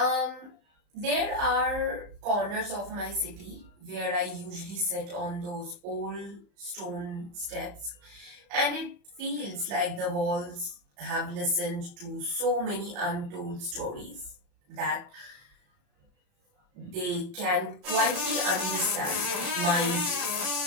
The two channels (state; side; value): late; left; 34 ms